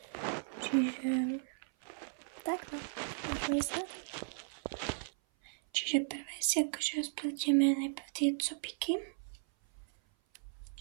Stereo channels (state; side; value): silent; left; 54 dB below the other